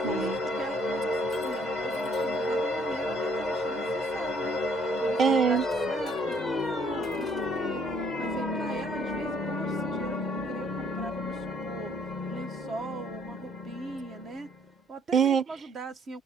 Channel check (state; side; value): normal; both; correlation 0.63